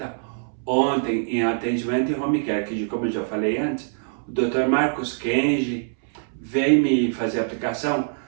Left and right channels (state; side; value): silent; left; 63 dB below the other